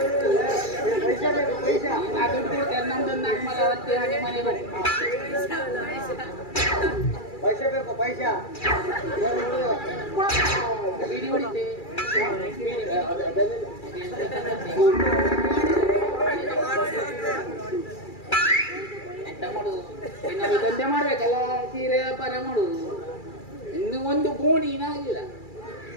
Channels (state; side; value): late; right; 2.3 ms